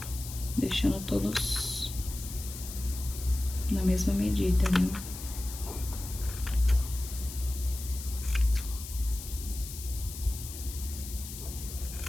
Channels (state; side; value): noise; left; hiss, 11 dB below the sound